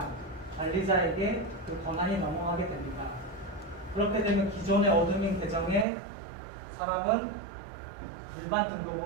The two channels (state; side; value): drops out; left; at 5.9 s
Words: 관리자에게 그 권한이 넘어가게 됩니다. 그렇게 되면 기존의 어드민 계정의 사람은 일반